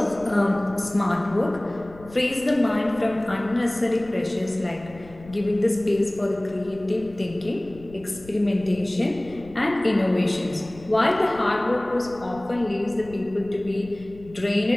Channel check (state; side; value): noise; left; rumble, 20 dB below the sound